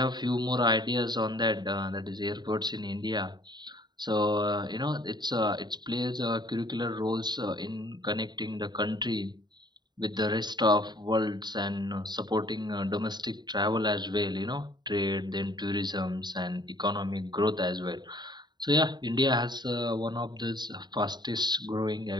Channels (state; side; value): late; left; 0.21 ms